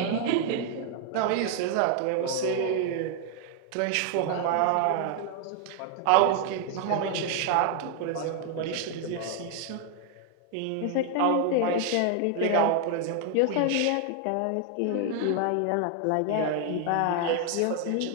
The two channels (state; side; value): different; both; correlation 0.00